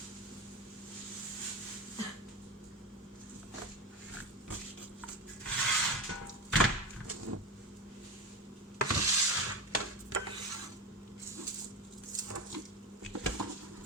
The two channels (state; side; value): normal; both; correlation 0.23